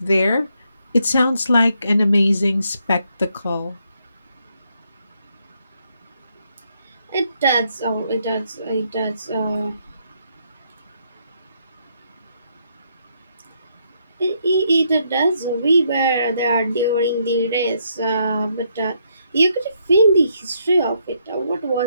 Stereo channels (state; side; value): inverted; both; correlation -0.75